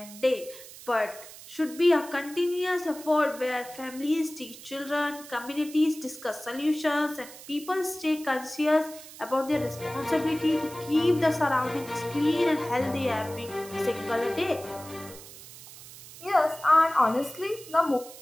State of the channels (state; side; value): noise; right; hiss, 16 dB below the sound